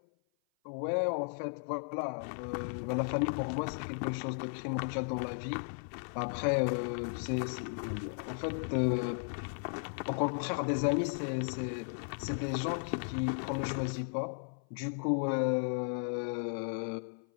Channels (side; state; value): right; silent; 54 dB below the other